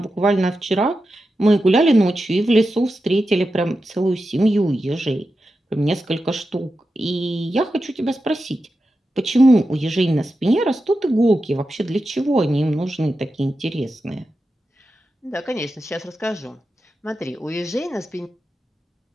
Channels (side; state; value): both; normal; correlation 0.90